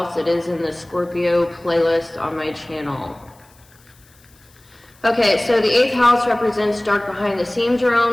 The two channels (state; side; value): noise; left; hiss, 30 dB below the sound